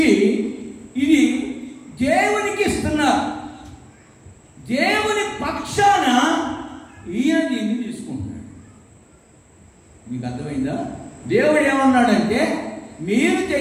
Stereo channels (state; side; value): identical; both; correlation 1.00